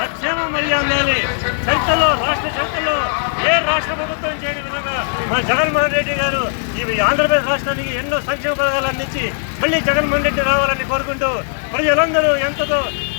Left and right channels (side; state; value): right; silent; digital silence